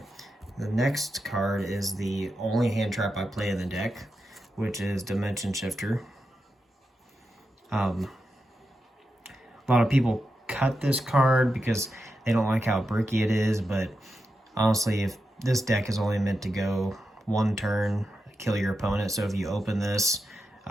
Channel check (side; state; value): both; normal; correlation 0.88